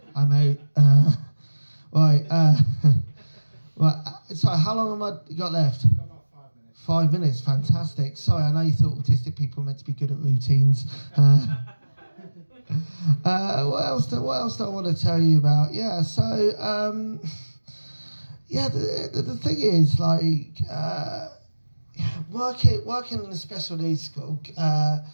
I'm out. Right. Right. Sorry, how long have I got left? 5 minutes, fantastic. Sorry, I know you thought autistic people were meant to be good at routines. What else do I want to tell you about? Yeah, so, yeah, the thing is, like, working in a special needs school,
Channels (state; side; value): inverted; both; correlation -1.00